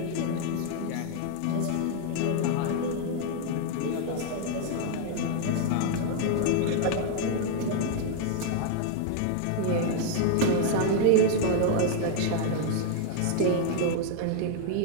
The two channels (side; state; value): both; different; correlation 0.00